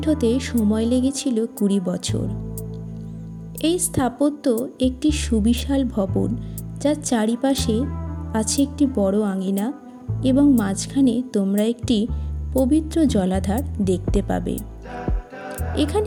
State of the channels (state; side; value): identical; both; correlation 1.00